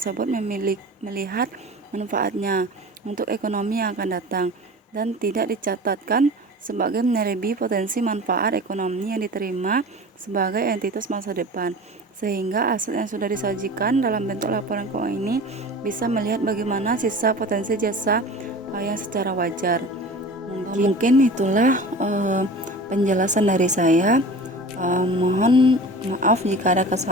melihat manfaatnya untuk ekonomi yang akan datang dan tidak dicatatkan sebagai menyelebi potensi manfaat ekonomi yang diterima sebagai entitas masa depan, sehingga aset yang sudah disajikan dalam bentuk laporan keuangan ini bisa melihat bagaimana sisa potensi jasa yang secara wajar. Mungkin itulah penjelasan dari saya. Mohon maaf jika ada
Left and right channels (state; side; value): normal; both; correlation 0.37